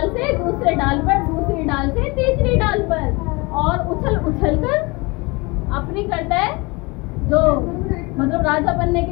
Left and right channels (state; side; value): quieter; right; 25.9 dB